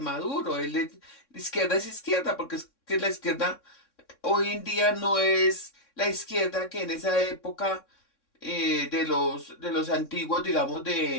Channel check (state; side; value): late; right; 3.6 ms